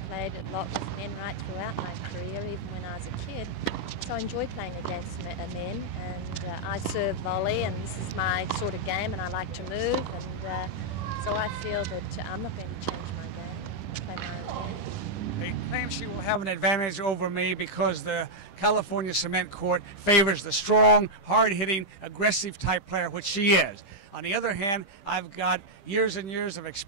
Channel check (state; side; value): late; right; 10 ms